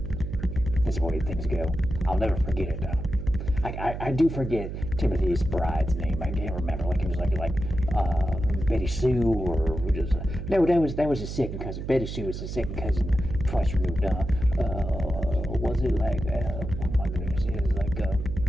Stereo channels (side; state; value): right; noise; hum, 6 dB below the sound